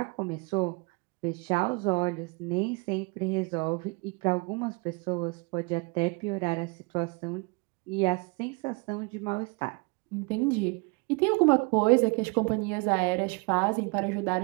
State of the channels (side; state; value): left; quieter; 29.5 dB